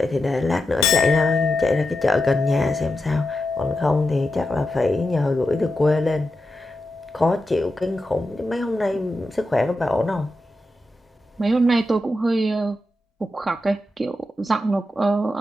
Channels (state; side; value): normal; both; correlation 0.88